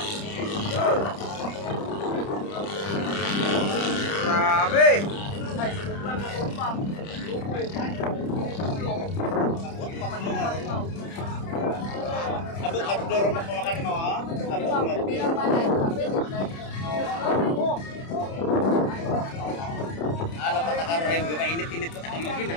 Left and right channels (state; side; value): late; right; 30 ms